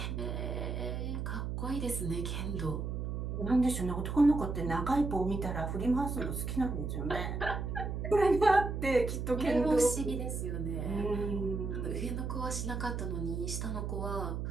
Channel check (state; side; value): noise; right; hum, 3 dB below the sound